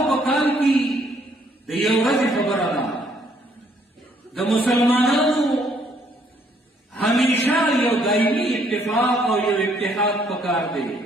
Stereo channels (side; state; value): both; normal; correlation 0.67